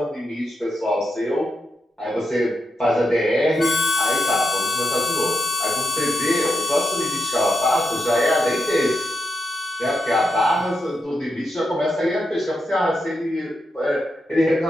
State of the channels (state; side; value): normal; both; correlation 0.85